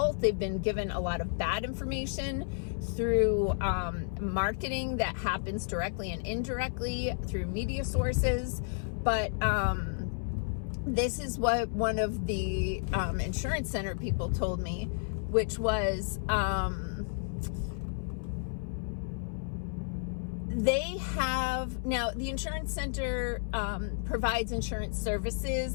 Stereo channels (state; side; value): silent; right; 57 dB below the other